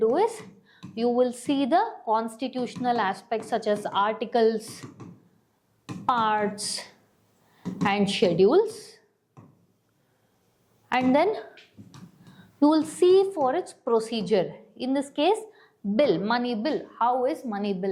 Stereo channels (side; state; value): both; identical; correlation 1.00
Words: is, you will see the constitutional aspects such as articles, parts and schedules, and then you will see for its procedure. In this case, bill, money bill. How is money